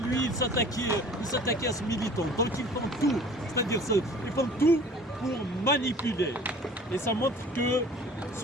il s'attaquait à ce militant. Donc ils font tout, c'est-à-dire ils font tout pour manipuler. Et ça montre que ce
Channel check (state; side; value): normal; both; correlation 0.47